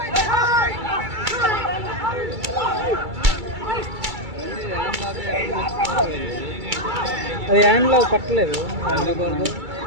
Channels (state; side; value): late; left; 2.3 ms